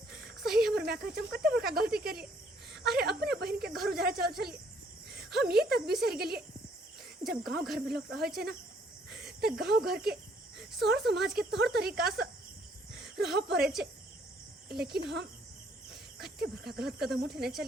सही हमर मैक कहै छै हम कते बड़का गलती केलिए। अरे अपने बहन के घर उजारे चल चलिए हम ये तक बिसर गेलिए जब गांव घर में लोग रहे छै ना तो गांव घर के सौर समाज के तौर तरीका से रह पड़े छै। लेकिन हम कते बड़का गलत कदम उठेने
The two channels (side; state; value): both; normal; correlation 0.65